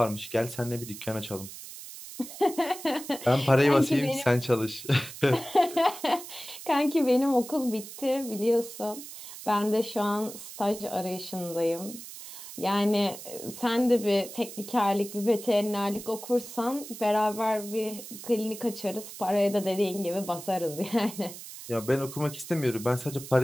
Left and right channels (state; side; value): noise; right; hiss, 13 dB below the sound